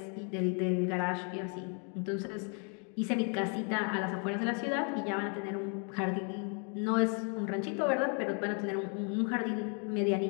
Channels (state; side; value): quieter; right; 39.2 dB